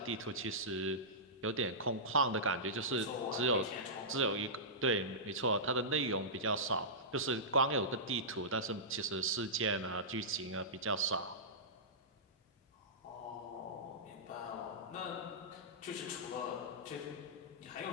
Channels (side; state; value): both; normal; correlation -0.16